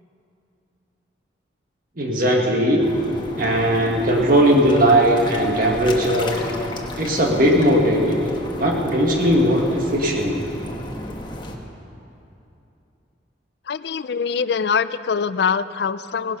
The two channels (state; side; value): normal; both; correlation 0.25